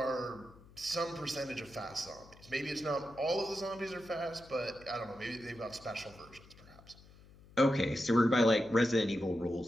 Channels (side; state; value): left; noise; hum, 23 dB below the sound